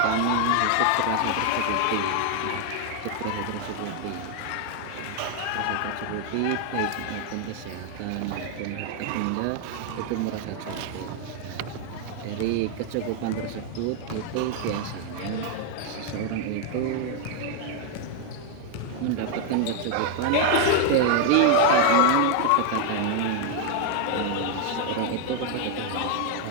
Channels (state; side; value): different; both; correlation 0.00